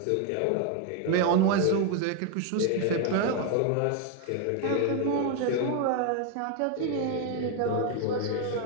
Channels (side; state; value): both; different; correlation 0.01